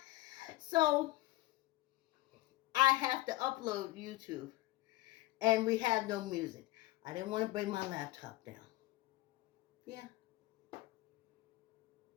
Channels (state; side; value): quieter; right; 19.0 dB